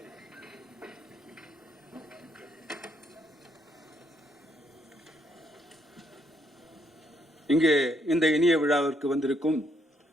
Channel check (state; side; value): normal; both; correlation 0.72